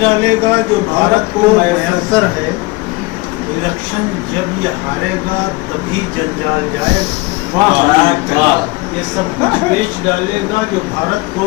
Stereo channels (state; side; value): quieter; right; 23.6 dB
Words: گا جو بھارت کو میسر ہے۔ الیکشن جب یہ ہارے گا تبھی جنجال جائے گا۔ یہ سب کچھ بیچ ڈالے گا جو بھارت